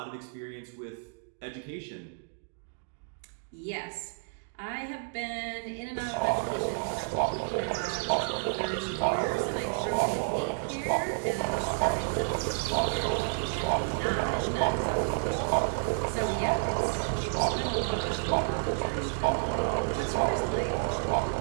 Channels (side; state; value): left; silent; digital silence